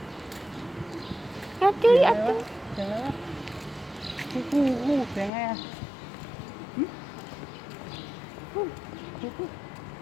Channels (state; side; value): drops out; right; at 5.3 s